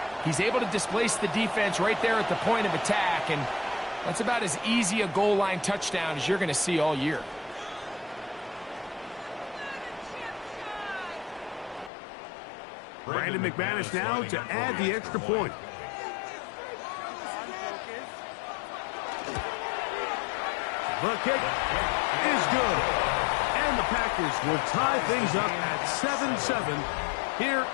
He's able to displace the defense right there at the point of attack, and that's about as easy a goal line touchdown as you're going to see all year. Brandon McManus now to add the extra point. The kick is good. And the Packers will tie things up at 7-7 here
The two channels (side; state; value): right; drops out; at 11.9 s